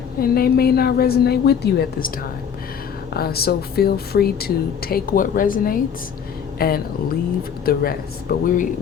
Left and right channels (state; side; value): quieter; right; 7.6 dB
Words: and they may not resonate with you at this time. So feel free to take what resonates and leave the rest. But